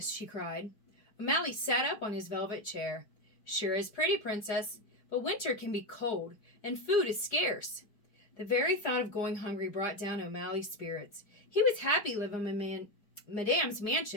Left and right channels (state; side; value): late; right; 4.8 ms